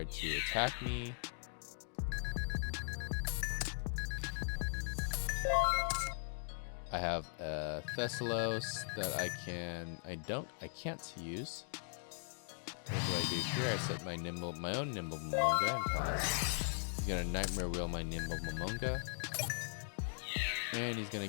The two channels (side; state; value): right; silent; digital silence